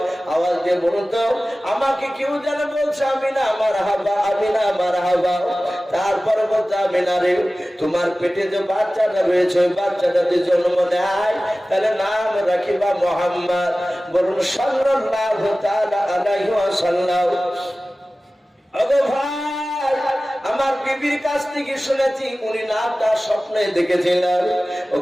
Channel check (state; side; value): normal; both; correlation 0.97